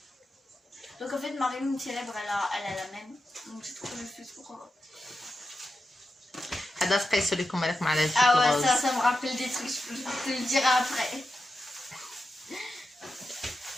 Donc en fait Marie-Lune célèbre elle a la même. Donc j'ai trouvé le plus pour هذا تقيسو لكم مالك مع هذا. Ah ouais ça me rappelle des trucs, je te le dirai après.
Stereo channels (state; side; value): normal; both; correlation 0.90